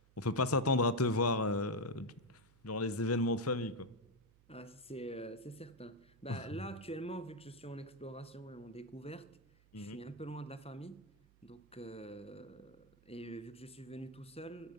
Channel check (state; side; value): noise; right; hum, 28 dB below the sound